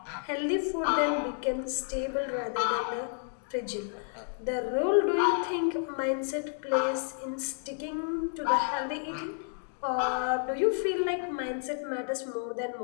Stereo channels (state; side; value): silent; right; 57 dB below the other